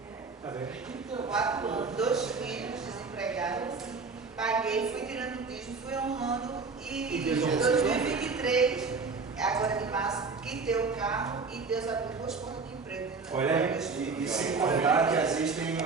4 anos, 2 filhos desempregados, paguei, fui tirando o dízimo, fui honrando e em 2023, agora de março, quitei o carro e Deus abriu 2 portas de emprego. Olha aí, e sem contar que às vezes a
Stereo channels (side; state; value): left; quieter; 4.5 dB